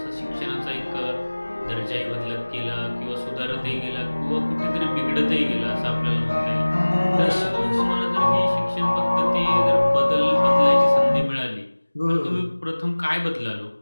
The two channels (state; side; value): inverted; both; correlation -1.00